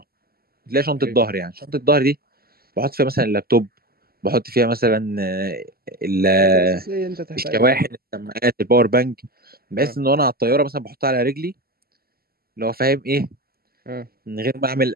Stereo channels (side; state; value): left; late; 0.44 ms